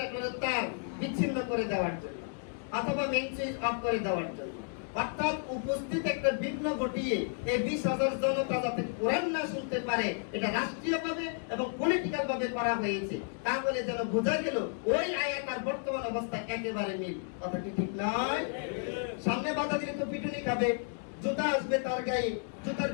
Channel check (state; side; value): silent; right; 56 dB below the other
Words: তার বিচ্ছিন্ন করে দেওয়ার জন্য অথবা মেইন সুইচ অফ করে দেওয়ার জন্য। অর্থাৎ উপস্থিত একটা বিঘ্ন ঘটিয়ে এই 20,000 জনতা যাতে কোরআন না শুনতে পারে, এটা রাষ্ট্রীয়ভাবে এবং পলিটিক্যাল ভাবে করা হয়েছে। তাহলে যেন বোঝা গেল ওই আয়াত আর বর্তমান অবস্থা একেবারে মিল। কথা কি ঠিক নয়? সামনে বাধা দিলে তো পিটুনি খাবে, জুতা আসবে তার গায়ে, জুতার